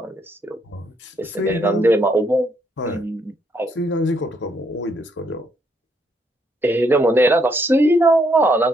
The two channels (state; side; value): normal; both; correlation 0.73